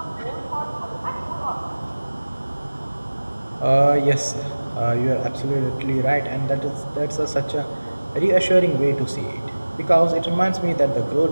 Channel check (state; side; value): inverted; both; correlation -1.00